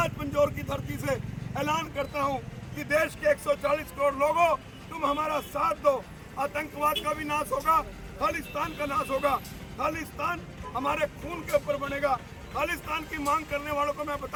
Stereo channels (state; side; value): identical; both; correlation 1.00